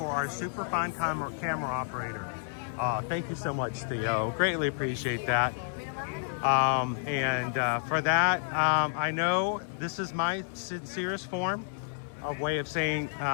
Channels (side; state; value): right; silent; 58 dB below the other